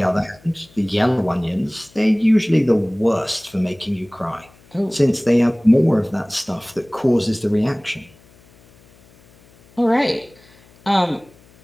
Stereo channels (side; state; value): left; noise; hum, 28 dB below the sound